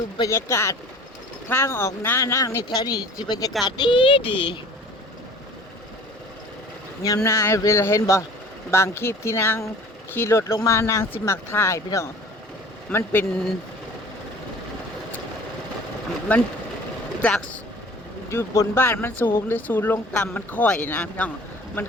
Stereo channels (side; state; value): both; normal; correlation 0.46